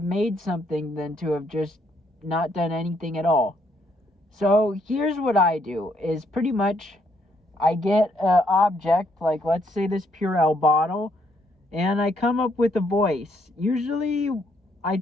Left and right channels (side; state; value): both; normal; correlation 0.72